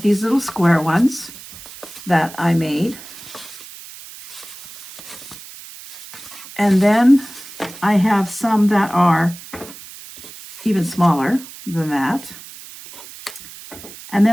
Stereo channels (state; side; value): noise; right; hiss, 16 dB below the sound